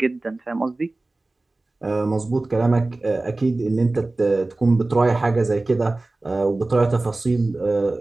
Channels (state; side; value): quieter; left; 3.0 dB